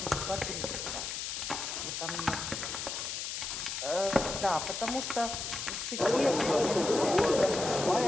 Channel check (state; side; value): noise; left; hiss, 4 dB below the sound